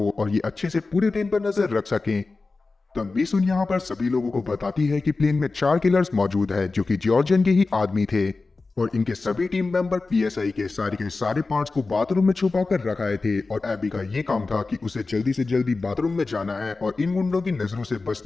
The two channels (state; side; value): quieter; right; 3.8 dB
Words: और ये अच्छे से पूरे प्लेन पर नजर रख सकें। तब मिसुन यहाँ पर सभी लोगों को बताती है कि प्लेन में 4 किलर्स मौजूद है जो कि जॉर्जन के ही आदमी थे और इनके सभी टीम मेंबर PSI के सारे पार्ट्स को बाथरूम में छुपा कर रखाए थे। और एबी का ये काम था कि उसे जल्दी से जल्दी बाथरूम में जाना है और इन गुंडों की नजरों से